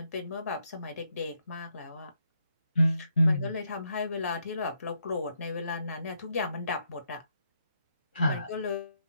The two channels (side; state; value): both; inverted; correlation -0.77